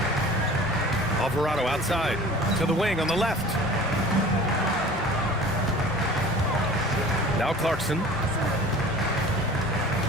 Alvarado outside to the wing on the left. Now Clarkson.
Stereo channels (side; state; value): both; normal; correlation 0.43